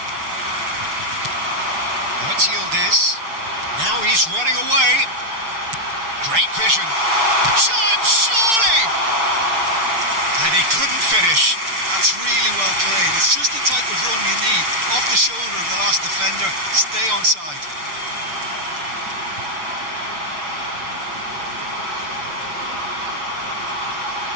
Now it's Yildiz. Now he's running away. Great vision. Chance, surely! And he couldn't finish. That's really well played. It's just the type of run you need. Off the shoulder of the last defender. Stay onside.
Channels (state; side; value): late; left; 6.7 ms